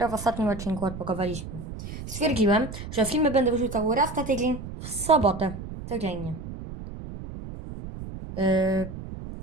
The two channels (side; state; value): right; noise; rumble, 10 dB below the sound